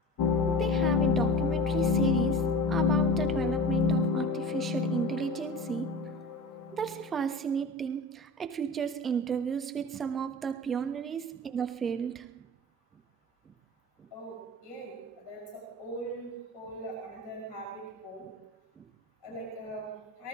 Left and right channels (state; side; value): normal; both; correlation 0.33